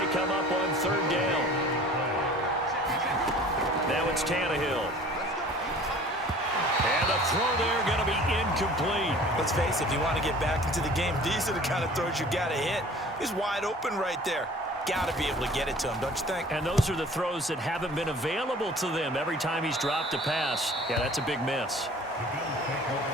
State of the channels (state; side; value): normal; both; correlation 0.47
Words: come up on 3rd down. Now it's Tannehill. And the throw there going to be incomplete. Let's face it, if you want to get back into the game, these are the kind of throws you got to hit. He's wide open right there. Got to be able to get it to him, don't you think? And those are the throws that haven't been available to them every time he's dropped a pass. Yeah, that's a big miss.